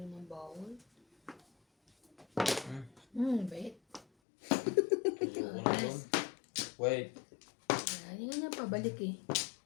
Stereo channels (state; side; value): drops out; right; at 4.0 s